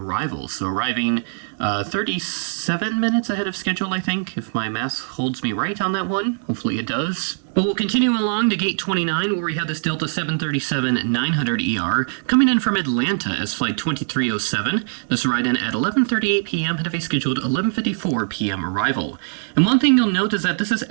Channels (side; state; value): left; silent; digital silence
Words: So arriving 37 minutes ahead of schedule, I think, if my math holds me right on that one. Hopefully it does. But we'll continue along to gate 29, where we have this Delta 737-900ER coming in from Atlanta as Flight 2307. This will ride in at 11:38 p.m., ahead of a scheduled 11:54 p.m. arrival. And one thing you'll note is that this is